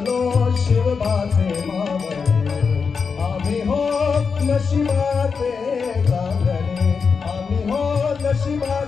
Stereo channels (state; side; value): quieter; right; 5.5 dB